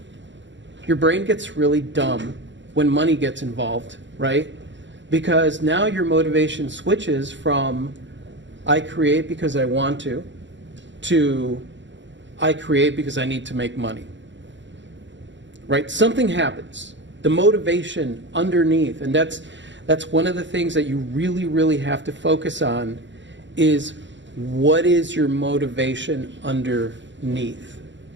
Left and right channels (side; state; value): left; late; 0.54 ms